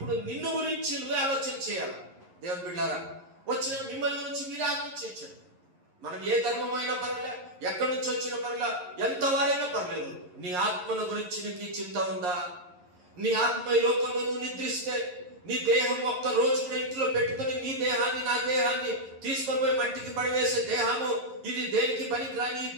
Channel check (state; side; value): late; left; 11 ms